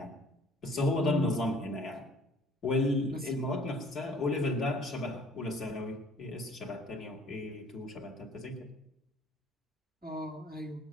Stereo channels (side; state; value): both; normal; correlation 0.55